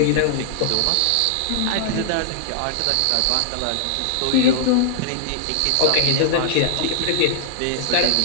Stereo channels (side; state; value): both; different; correlation 0.00